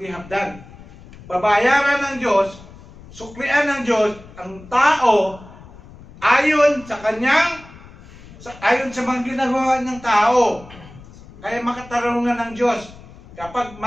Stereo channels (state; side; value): noise; left; rumble, 20 dB below the sound